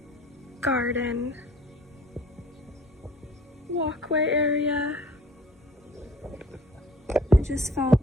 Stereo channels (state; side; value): normal; both; correlation 0.52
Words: garden walkway area. I just felt